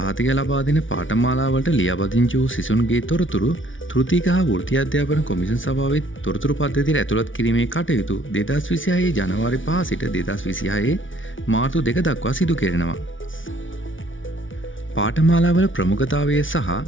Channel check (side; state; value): right; late; 0.56 ms